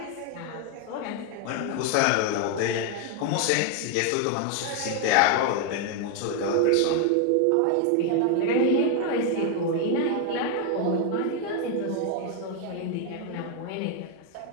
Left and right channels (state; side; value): different; both; correlation 0.01